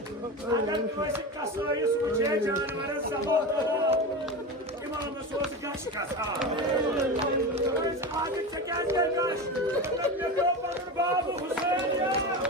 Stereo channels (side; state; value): both; normal; correlation 0.24